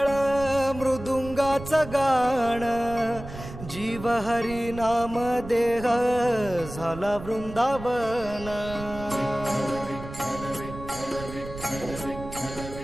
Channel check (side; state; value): right; noise; rumble, 12 dB below the sound